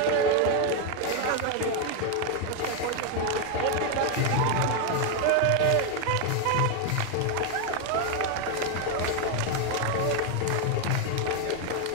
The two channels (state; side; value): different; both; correlation 0.01